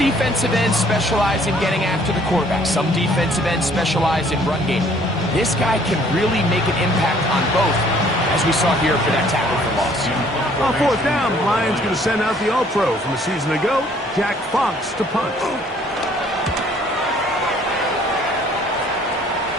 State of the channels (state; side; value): normal; both; correlation 0.59